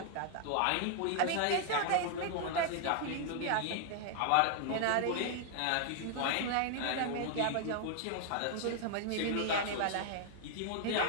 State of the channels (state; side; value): different; both; correlation 0.00